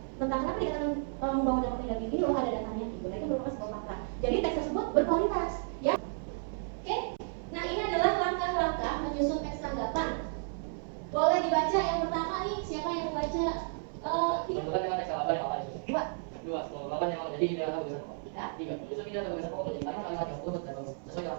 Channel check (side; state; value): left; silent; 56 dB below the other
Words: tentang kenapa dikatakan membawa dampak negatif ini, loh ada datanya gitu. Nah itu merupakan sebuah fakta. Jadi teks tersebut berkualitas, ya. Oke. Nah ini adalah langkah-langkah menyusun teks tanggapan. Boleh dibaca yang pertama nih, siapa yang membaca? Menentukan dengan teks tanggapan yang apa itu? Dua. Menentukan yang apa? Jadi ide atau tulisan apa? Tiga. Tiga. Justru ide atau tulisan pokok penting karena kalimat yang urut dan bagus. Sesuai